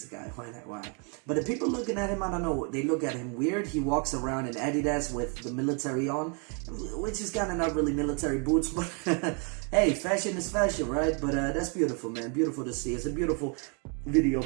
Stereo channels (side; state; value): left; quieter; 37.4 dB